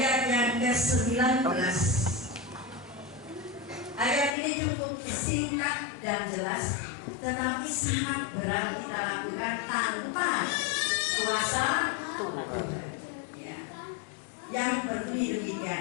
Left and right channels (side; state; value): right; drops out; at 4.4 s